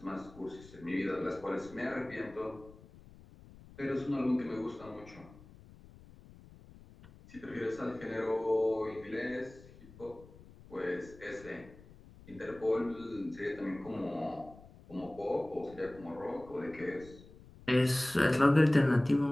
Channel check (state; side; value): noise; left; rumble, 21 dB below the sound